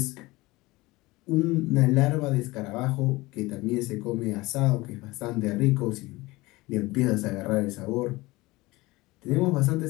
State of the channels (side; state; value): right; quieter; 21.0 dB